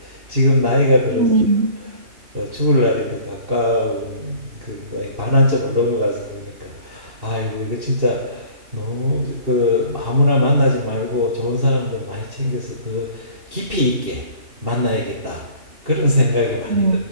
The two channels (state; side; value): late; left; 2.7 ms